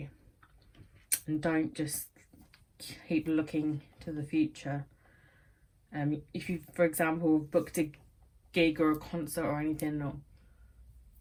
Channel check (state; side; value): identical; both; correlation 1.00